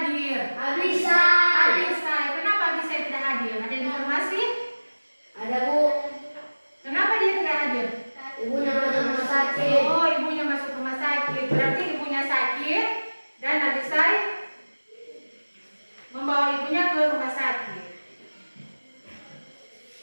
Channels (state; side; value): inverted; both; correlation -1.00